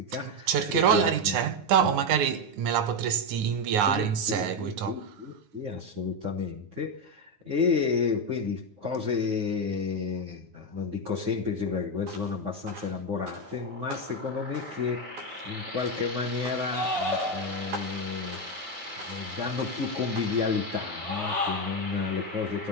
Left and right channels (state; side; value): late; left; 9.7 ms